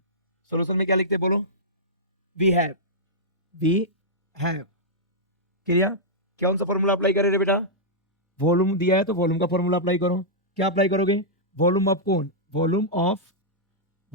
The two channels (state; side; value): normal; both; correlation -0.11